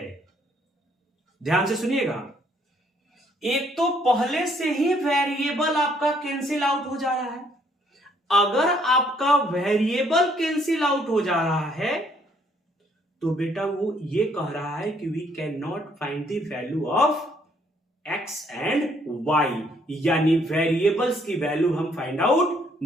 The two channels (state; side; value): normal; both; correlation 0.66